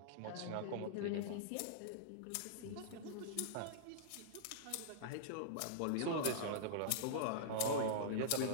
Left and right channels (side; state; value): both; different; correlation -0.02